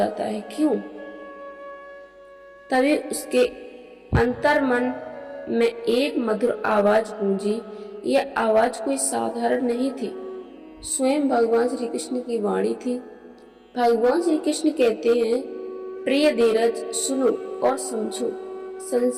है, क्यों? तभी उसके अंतर्मन में एक मधुर आवाज गूंजी। यह आवाज कोई साधारण नहीं थी, स्वयं भगवान श्री कृष्ण की वाणी थी। भगवान श्री कृष्ण कहते हैं, प्रिय धीरज, सुनो और समझो।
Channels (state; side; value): identical; both; correlation 1.00